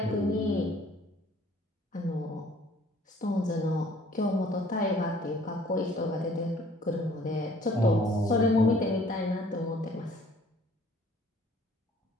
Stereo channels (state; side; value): normal; both; correlation 0.56